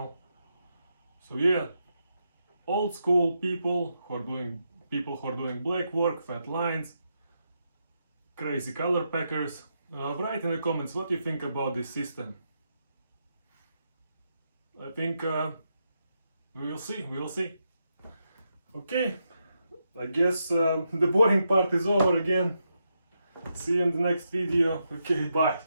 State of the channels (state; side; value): inverted; both; correlation -0.83